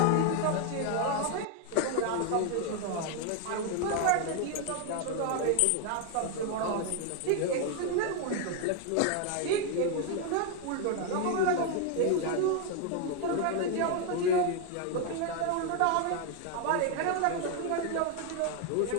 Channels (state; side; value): different; both; correlation 0.01